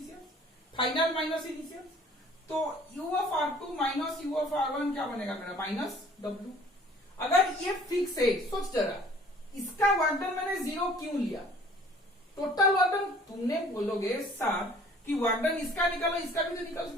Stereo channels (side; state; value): both; normal; correlation 0.53